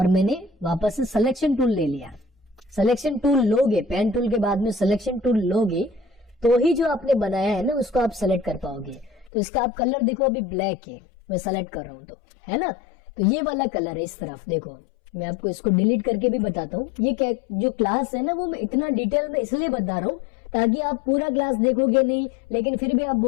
मैंने वापस से सिलेक्शन टूल ले लिया। सिलेक्शन टूल लोगे, पेन टूल के बाद में सिलेक्शन टूल लोगे तो ही जो आपने बनाया है ना उसको आप सेलेक्ट कर पाओगे। तो इसका आप कलर देखो अभी ब्लैक है, मैं सेलेक्ट कर रहा हूं तो, है ना। तो ये वाला कलर है इस तरफ, देखो मैं आपको इसको डिलीट करके भी बताता हूँ। ये क्या जो क्लास है ना, वो मैं इतना डिटेल में इसलिए बता रहा हूँ ताकि आप पूरा क्लास देखोगे नहीं, लेकिन फिर भी आप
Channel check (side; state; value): right; drops out; at 9.3 s